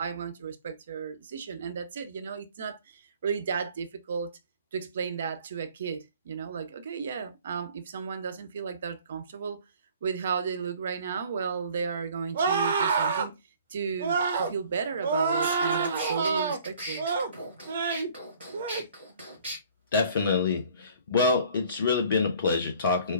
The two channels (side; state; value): both; inverted; correlation -0.54